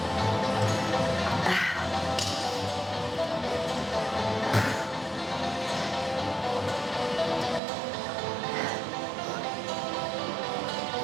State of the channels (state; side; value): drops out; left; at 7.6 s